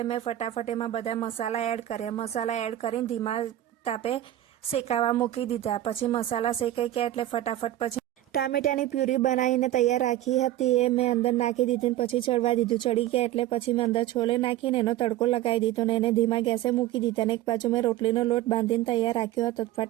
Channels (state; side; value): quieter; left; 13.8 dB